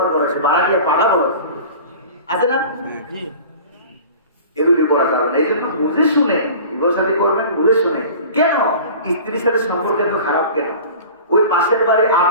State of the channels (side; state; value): both; inverted; correlation -0.40